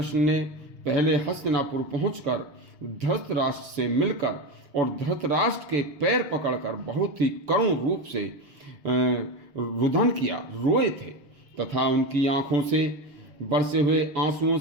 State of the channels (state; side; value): late; left; 6.6 ms